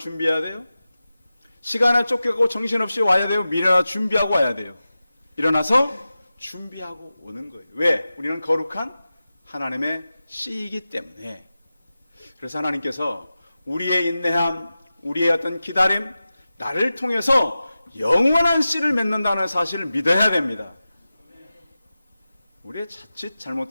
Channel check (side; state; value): both; inverted; correlation -0.94